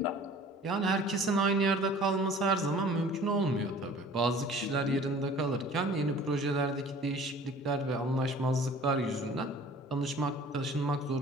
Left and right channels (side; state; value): both; normal; correlation 0.47